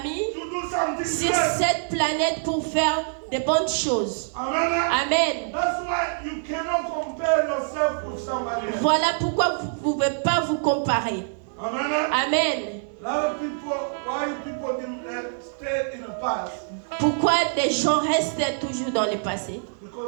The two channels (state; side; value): silent; left; 62 dB below the other